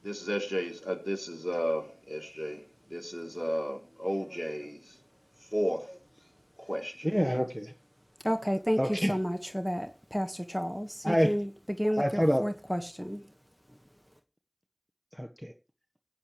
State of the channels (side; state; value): both; identical; correlation 1.00